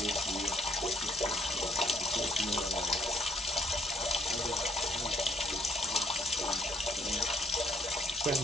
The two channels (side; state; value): both; normal; correlation 0.68